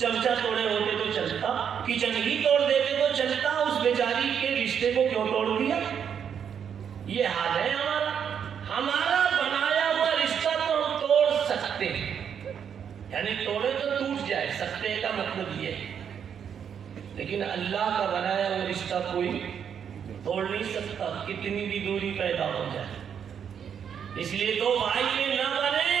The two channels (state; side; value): quieter; left; 7.9 dB